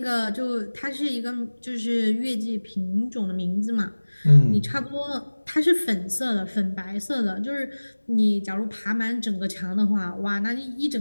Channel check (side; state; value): both; inverted; correlation -1.00